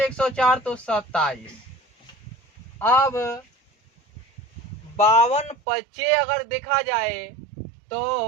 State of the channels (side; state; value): left; drops out; at 5.6 s